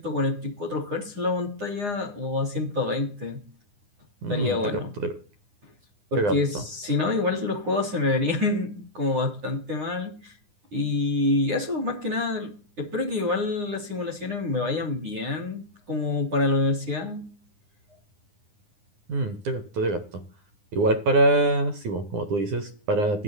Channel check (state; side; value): late; left; 9.8 ms